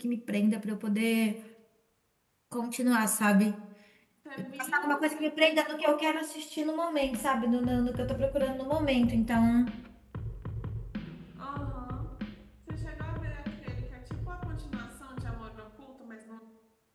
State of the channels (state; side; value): identical; both; correlation 1.00